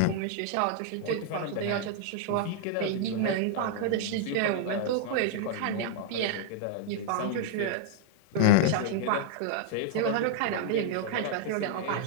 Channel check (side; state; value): both; different; correlation -0.01